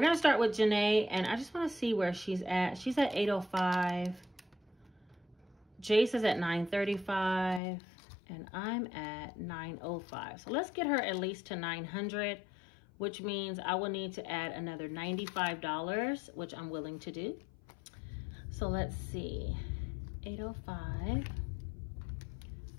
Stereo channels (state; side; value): drops out; right; at 7.6 s